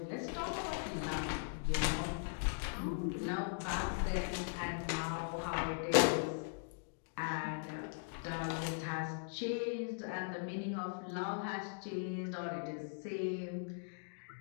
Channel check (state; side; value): silent; right; digital silence